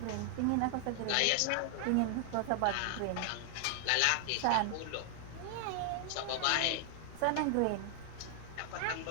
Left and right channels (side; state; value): both; different; correlation 0.00